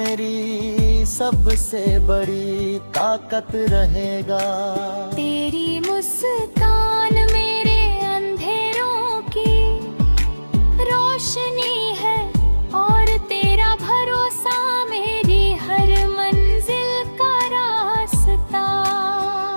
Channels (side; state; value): both; inverted; correlation -1.00